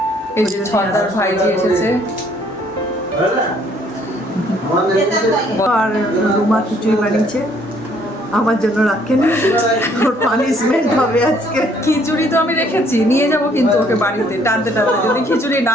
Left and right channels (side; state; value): both; normal; correlation 0.63